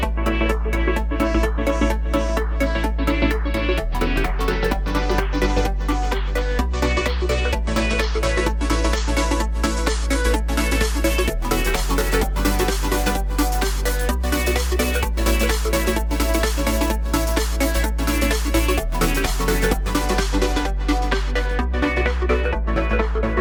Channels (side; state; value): both; identical; correlation 1.00